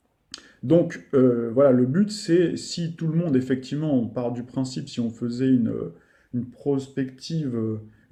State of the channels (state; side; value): identical; both; correlation 1.00